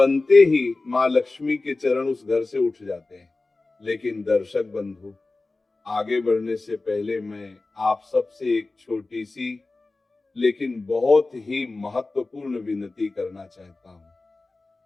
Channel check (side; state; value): right; quieter; 3.3 dB